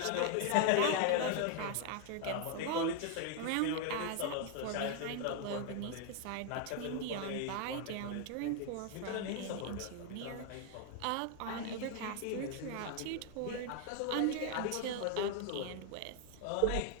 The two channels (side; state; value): both; different; correlation 0.00